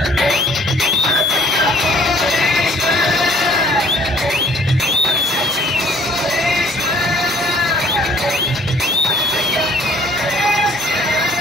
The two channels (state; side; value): normal; both; correlation 0.59